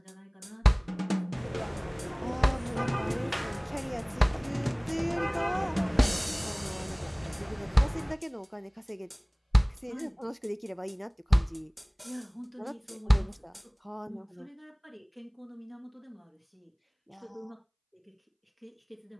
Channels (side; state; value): both; identical; correlation 1.00